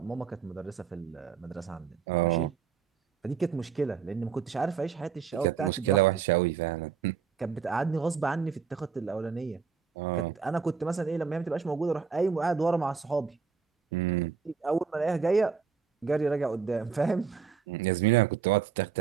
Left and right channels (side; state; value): left; quieter; 6.2 dB